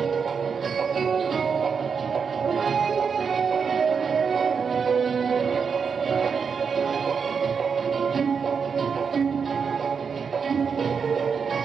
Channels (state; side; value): quieter; left; 6.0 dB